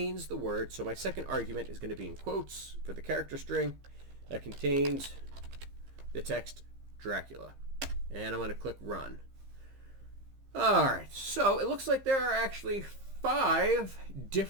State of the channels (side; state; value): left; late; 15 ms